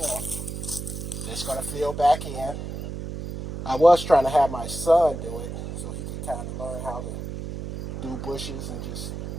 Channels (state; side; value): noise; right; hum, 7 dB below the sound